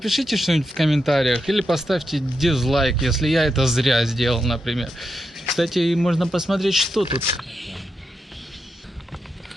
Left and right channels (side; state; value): both; normal; correlation 0.85